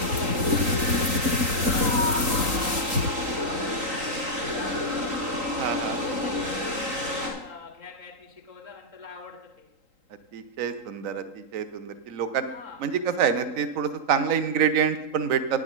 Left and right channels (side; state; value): left; late; 3.8 ms